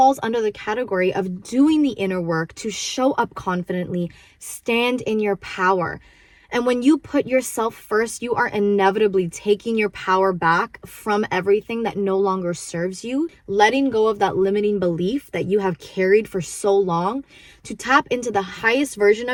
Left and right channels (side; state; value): both; identical; correlation 1.00